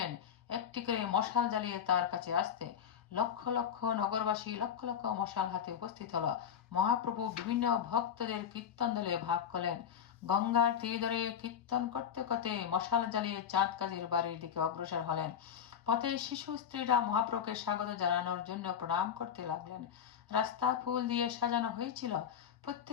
একটি করে মশাল জ্বালিয়ে তার কাছে আসতে। লক্ষ লক্ষ নগরবাসী লক্ষ লক্ষ মশাল হাতে উপস্থিত হলো। মহাপ্রভু বিভিন্ন ভক্তদের কীর্তন দলে ভাগ করলেন। গঙ্গার তীর ধরে কীর্তন করতে করতে মশাল জ্বালিয়ে চাঁদ কাজীর বাড়ির দিকে অগ্রসর হলেন। পথে শিশু স্ত্রীরা মহাপ্রভুকে স্বাগত জানানোর জন্য প্রণাম করতে লাগলেন। রাস্তা ফুল দিয়ে সাজানো হয়েছিল।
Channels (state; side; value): quieter; right; 8.3 dB